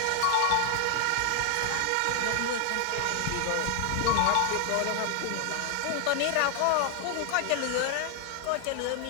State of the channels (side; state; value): both; different; correlation 0.00